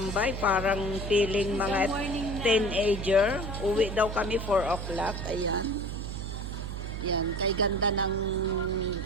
parang feeling mga teenager. Uwi daw kami 4 o'clock. Ayan. Yan, kay ganda ng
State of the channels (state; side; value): noise; right; hum, 6 dB below the sound